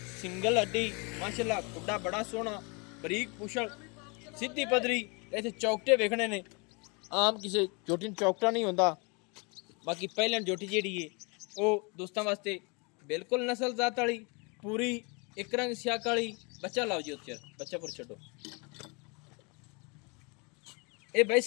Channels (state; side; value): quieter; right; 31.2 dB